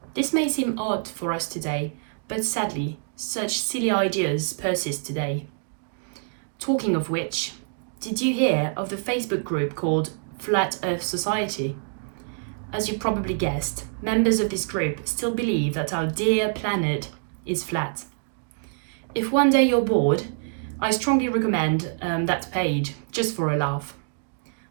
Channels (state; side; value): silent; left; digital silence